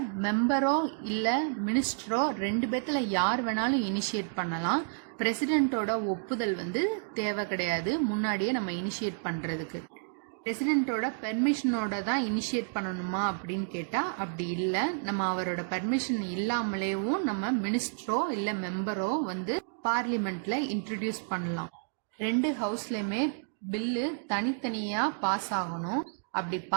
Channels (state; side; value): silent; left; digital silence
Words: மெம்பரோ இல்ல மினிஸ்டரோ 2 பேத்துல யார் வேணாலும் இனிஷியேட் பண்ணலாம். பிரசிடென்ட்டோட ஒப்புதல் வந்து தேவை கிடையாது முன்னாடியே நம்ம இனிஷியேட் பண்றதுக்கு. பிரசிடென்ட்டோட பெர்மிஷனோட தான் இனிஷியேட் பண்ணணுமா அப்படின்னு கேட்டா அப்படி இல்ல. நம்ம அவரோட பெர்மிஷன் இல்லாமலேயும் நம்ம மினிஸ்டரோ இல்ல மெம்பரோ வந்து பார்லிமெண்ட்ல இன்ட்ரோடியூஸ் பண்ணலாம். 2 ஹவுஸ்லயுமே பில்லு தனித்தனியா பாஸ் ஆகணும். அப்படி